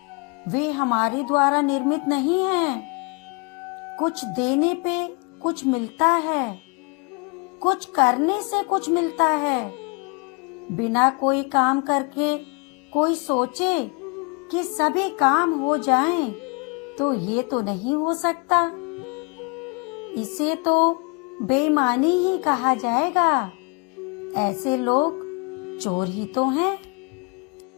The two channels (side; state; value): right; quieter; 31.6 dB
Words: वे हमारे द्वारा निर्मित नहीं हैं। कुछ देने पे कुछ मिलता है, कुछ करने से कुछ मिलता है। बिना कोई काम करके कोई सोचे कि सभी काम हो जाएं, तो ये तो नहीं हो सकता। इसे तो बेईमानी ही कहा जाएगा। ऐसे लोग चोर ही तो हैं।